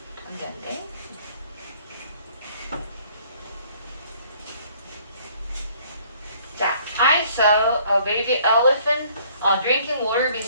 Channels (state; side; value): inverted; both; correlation -0.60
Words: 안 돼, 안 돼. 자, I saw a baby elephant drinking water